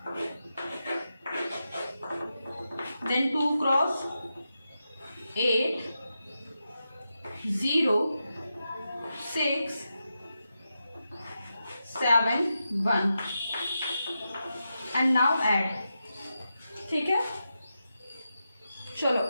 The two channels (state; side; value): inverted; both; correlation -0.88